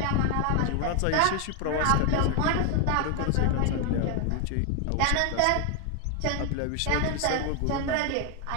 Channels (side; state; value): both; different; correlation 0.00